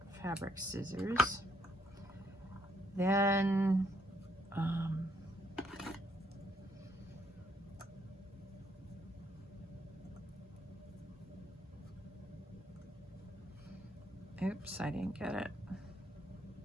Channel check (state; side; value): normal; both; correlation 0.72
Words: fabric scissors. Then Oops, I didn't get it.